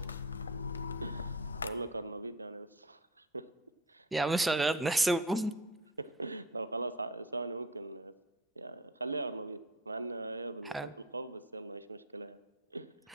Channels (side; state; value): both; normal; correlation 0.33